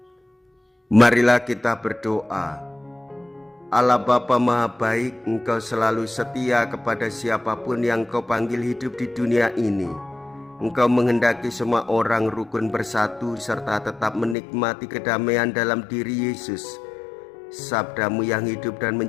Marilah kita berdoa. Allah Bapa Maha Baik, Engkau selalu setia kepada siapapun yang Kau panggil hidup di dunia ini. Engkau menghendaki semua orang rukun bersatu serta tetap menikmati kedamaian dalam diri Yesus, sabda-Mu yang hidup dan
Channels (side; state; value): right; drops out; at 14.4 s